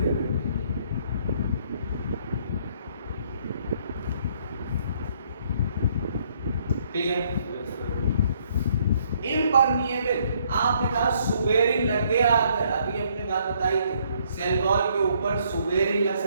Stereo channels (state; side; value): inverted; both; correlation -0.67